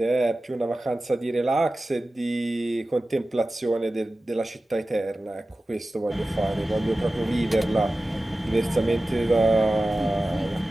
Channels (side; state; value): both; normal; correlation 0.95